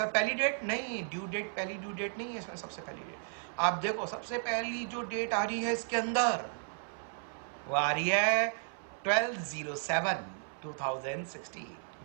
पहली डेट नहीं, ड्यू डेट पहली ड्यू डेट नहीं है इसमें, सबसे पहली डेट आप देखो, सबसे पहली जो डेट आ रही है इसके अंदर वो आ रही है 12/07/2016,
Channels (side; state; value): left; silent; 55 dB below the other